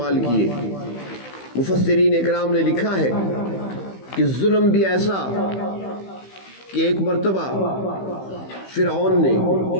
کیے۔ مفسرین اکرام نے لکھا ہے کہ ظلم بھی ایسا کہ ایک مرتبہ فرعون نے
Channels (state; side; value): late; right; 15 ms